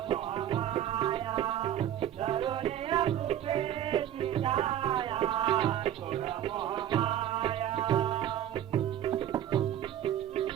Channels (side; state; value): left; quieter; 11.1 dB